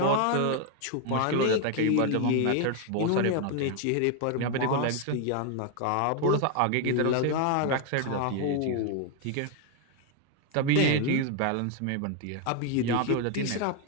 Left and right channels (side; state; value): both; different; correlation 0.01